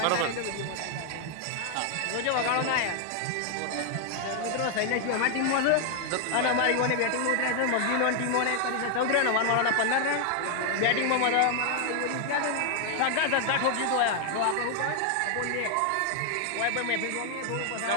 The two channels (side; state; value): both; different; correlation 0.00